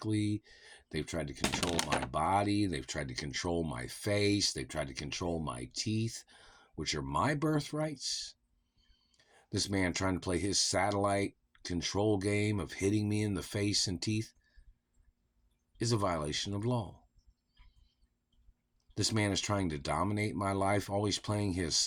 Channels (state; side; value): identical; both; correlation 1.00